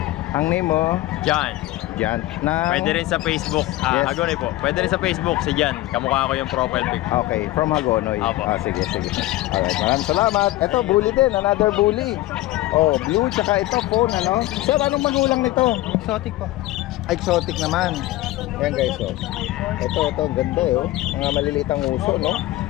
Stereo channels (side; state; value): right; quieter; 16.9 dB